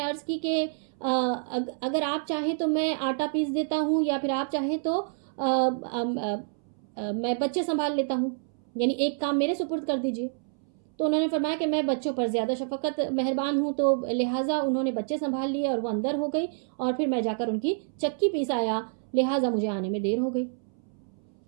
عرض کی کہ اگر آپ چاہیں تو میں آٹا پیس دیتا ہوں، یا پھر آپ چاہیں تو میں بچے سنبھال لیتا ہوں، یعنی ایک کام میرے سپرد کر دیجیے۔ تو انہوں نے فرمایا کہ میں بچوں پر زیادہ شفقت مہربان ہوں، تو لہٰذا انہوں نے بچے سنبھال لیے اور وہ اندر ہو گئی، اور پھر میں جا کر ان کی چکی پیس آیا، لہٰذا مجھے آنے میں دیر ہو گئی،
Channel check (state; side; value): silent; left; 59 dB below the other